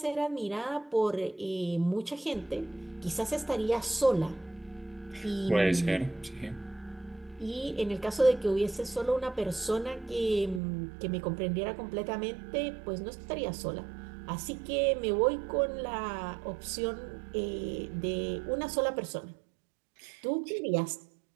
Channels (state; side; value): drops out; left; at 10.6 s